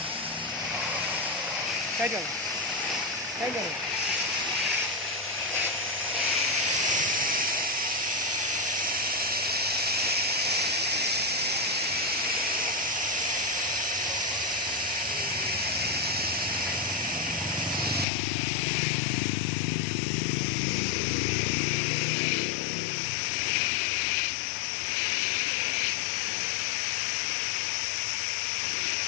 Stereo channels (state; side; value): drops out; right; at 18.1 s